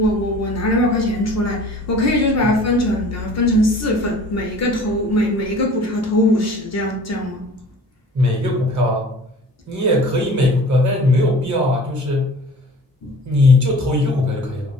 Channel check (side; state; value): both; normal; correlation 0.46